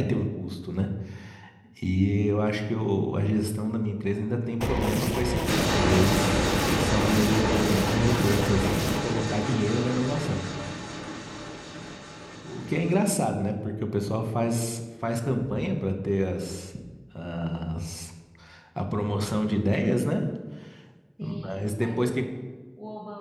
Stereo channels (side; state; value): both; identical; correlation 1.00